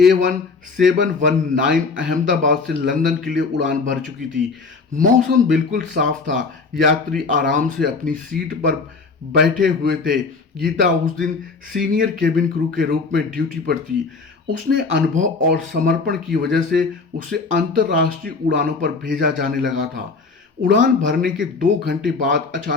अहमदाबाद से लंदन के लिए उड़ान भर चुकी थी। मौसम बिल्कुल साफ था, यात्री आराम से अपनी सीट पर बैठे हुए थे। गीता उस दिन सीनियर केबिन क्रू के रूप में ड्यूटी पर थी। उसने अनुभव और समर्पण की वजह से उसे अंतर्राष्ट्रीय उड़ानों पर भेजा जाने लगा था। उड़ान भरने के 2 घंटे बाद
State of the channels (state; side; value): quieter; right; 4.4 dB